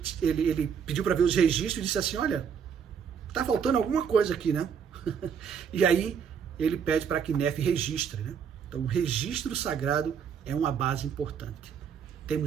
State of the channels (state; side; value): quieter; left; 7.2 dB